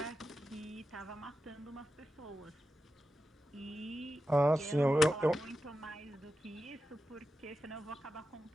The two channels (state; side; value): normal; both; correlation 0.90